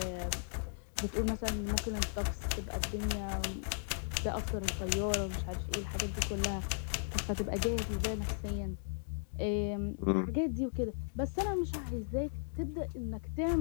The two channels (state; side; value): silent; right; digital silence